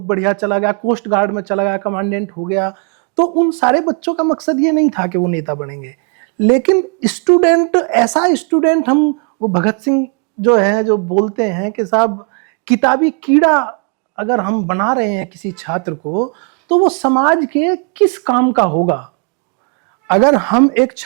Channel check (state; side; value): quieter; left; 39.4 dB